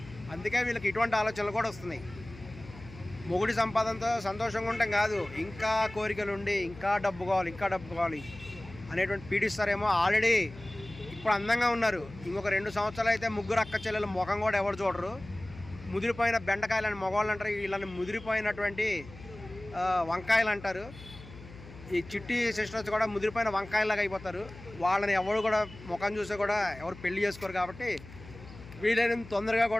అందుకే వీళ్ళకి ఇటువంటి ఆలోచనలు కూడా వస్తున్నాయి. మొగుడి సంపాదనతో సంతోషంగా ఉంటాం కాదు, ఇంకా కోరికలు ఉండి ఇంకా డబ్బు కావాలి ఇంకా డబ్బు కావాలి అనేటువంటి పీడిస్తారేమో. ఆల్రెడీ ఇప్పుడు అందంగా ఉన్నారు, ఇంకొక 2 సంవత్సరాలు అయితే ముగ్గురు అక్క చెల్లెల ముఖం కూడా ఎవరు చూడరు. ముదిరిపోయిన బెండకాయలని మగవాళ్ళు అంటారు, వీళ్ళని ముదిరిపోయినటువంటి వంకాయలు అంటారు. ఈ చిట్టి సిస్టర్స్ కూడా ముదిరిపోయిన వంకాయలాగా అయిపోతారు. వాళ్ళని ఎవరు కూడా ముఖం చూస్తే కూడా ఎవరు పెళ్లి చేసుకోరు. కాబట్టి వీలైనంత తొందరగా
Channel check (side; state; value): left; noise; hum, 17 dB below the sound